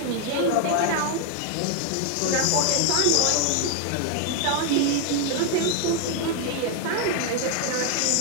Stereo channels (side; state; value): both; different; correlation 0.01